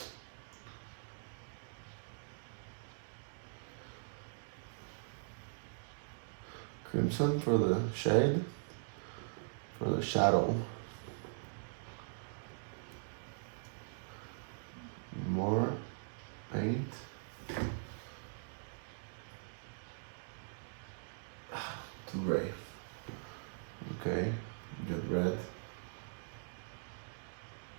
Crimson for the shade, for the shadow. More paint. Too gray. Okay, get red.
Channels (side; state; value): left; silent; digital silence